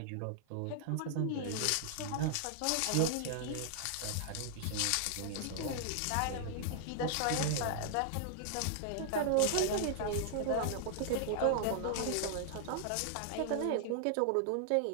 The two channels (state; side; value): different; both; correlation -0.01